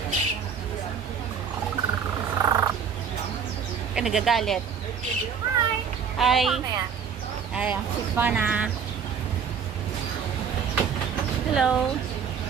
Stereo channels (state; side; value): quieter; left; 6.9 dB